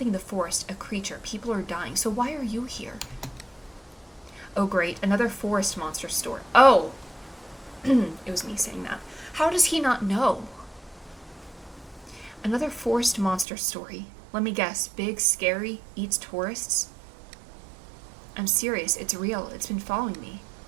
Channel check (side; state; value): left; drops out; at 13.5 s